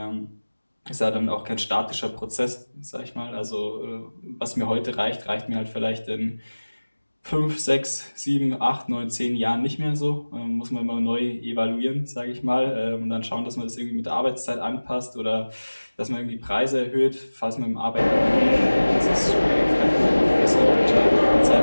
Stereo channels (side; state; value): both; inverted; correlation -1.00